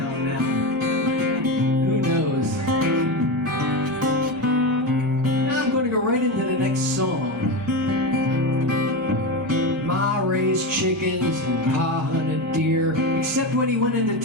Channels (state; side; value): normal; both; correlation 0.18